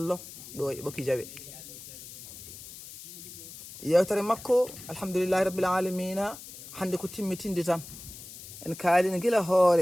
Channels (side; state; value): left; noise; hiss, 14 dB below the sound